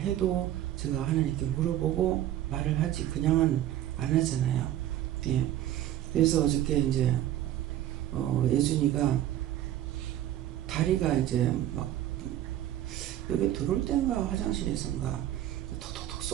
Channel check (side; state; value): left; quieter; 12.7 dB